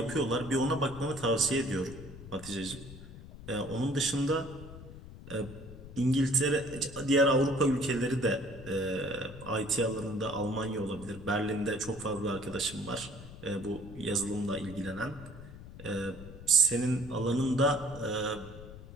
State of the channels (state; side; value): noise; left; rumble, 15 dB below the sound